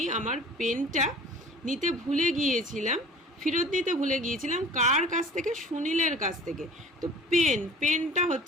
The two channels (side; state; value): both; normal; correlation 0.45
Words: আমার পেনটা নিতে ভুলে গিয়েছিলাম, ফেরত দিতে ভুলে গিয়েছিলাম, কার কাছ থেকে, সুনীলের কাছ থেকে। তো পেনটা